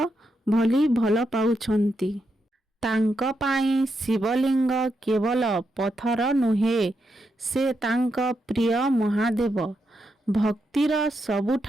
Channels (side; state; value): both; normal; correlation 0.83